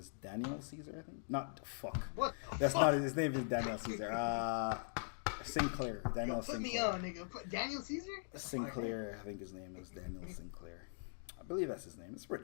Daniel Caesar. I think not fuck. What? That's not his name. Is Daniel Caesar. Sinclair. Daniel Sinclair. Put me on, nigga. Put Daniel Caesar. Sinclair. I think his name is Daniel Sinclair. I believe that's his name. It's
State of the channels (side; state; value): right; silent; digital silence